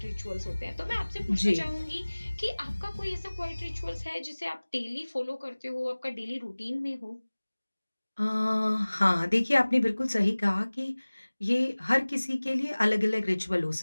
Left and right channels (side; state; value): both; inverted; correlation -1.00